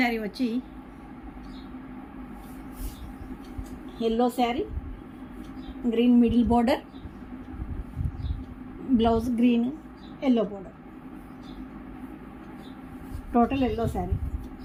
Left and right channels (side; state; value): both; identical; correlation 1.00